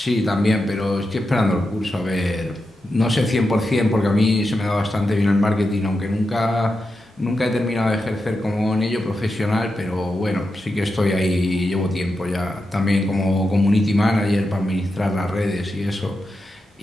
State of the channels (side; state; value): both; normal; correlation 0.88